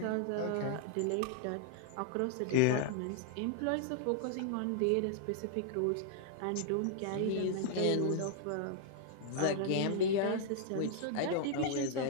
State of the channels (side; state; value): both; different; correlation -0.01